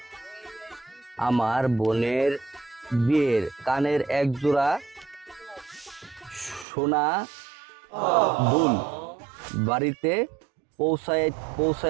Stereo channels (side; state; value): left; drops out; at 6.7 s